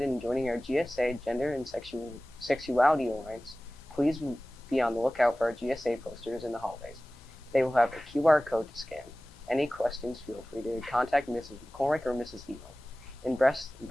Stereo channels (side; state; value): both; normal; correlation 0.97